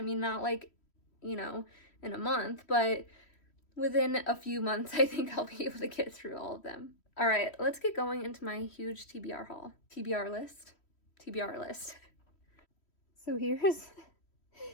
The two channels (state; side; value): late; right; 3.1 ms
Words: not like, you know, in a month, but within a few months I think I'll be able to get through all of them. All right, let's get going into my huge TBR haul. TBR list. So